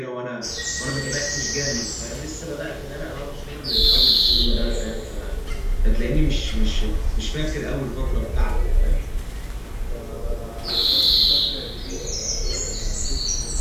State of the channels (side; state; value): both; identical; correlation 1.00